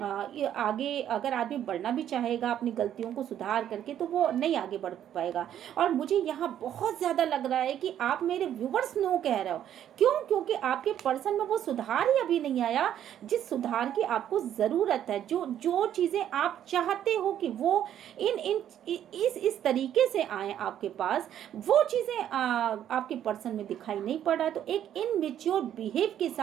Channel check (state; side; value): quieter; left; 10.5 dB